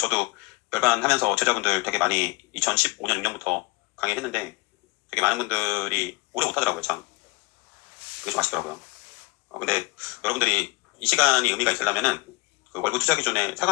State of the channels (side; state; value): right; quieter; 23.5 dB